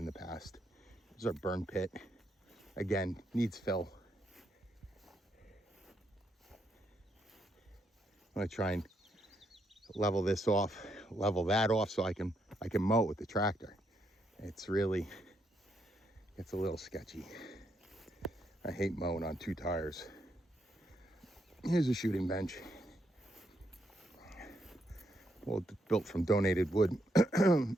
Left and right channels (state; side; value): normal; both; correlation 0.77